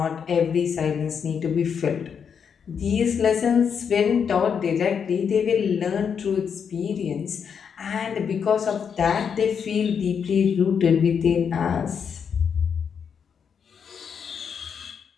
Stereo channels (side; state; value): right; quieter; 7.0 dB